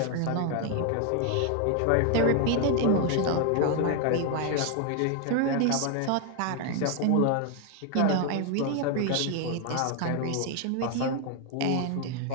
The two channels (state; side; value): different; both; correlation 0.01